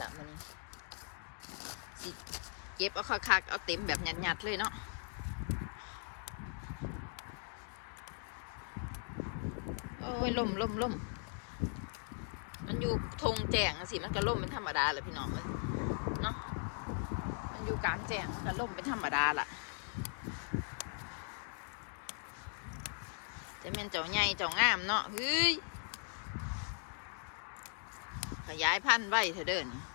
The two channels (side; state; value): right; silent; 52 dB below the other